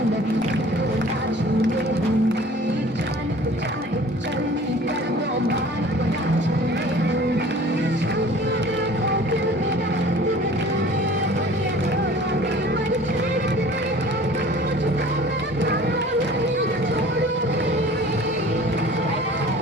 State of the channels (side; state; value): both; normal; correlation 0.47